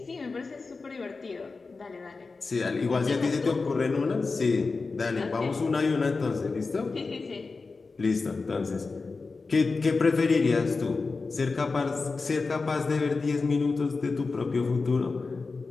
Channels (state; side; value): quieter; right; 4.1 dB